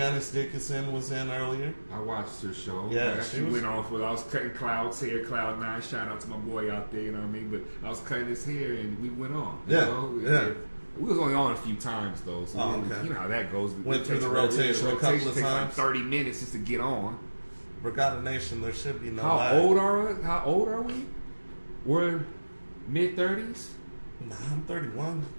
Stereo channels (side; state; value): both; inverted; correlation -1.00